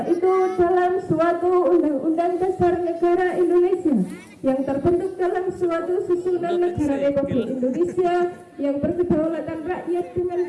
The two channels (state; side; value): identical; both; correlation 1.00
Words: itu dalam suatu Undang-Undang Dasar Negara Indonesia yang terbentuk dalam suatu susunan negara Republik Indonesia yang berkedaulatan rakyat dengan